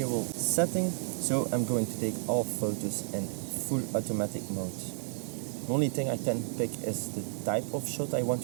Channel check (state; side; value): silent; left; digital silence